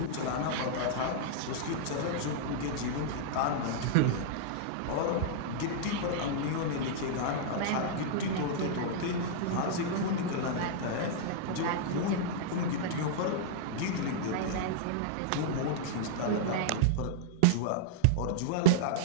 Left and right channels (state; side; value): different; both; correlation -0.02